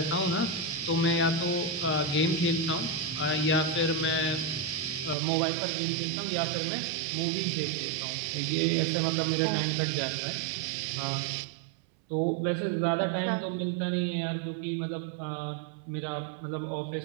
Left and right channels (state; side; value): drops out; left; at 5.2 s